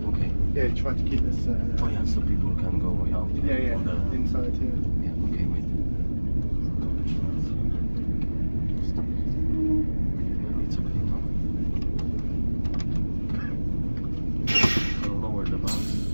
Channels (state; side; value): inverted; both; correlation -1.00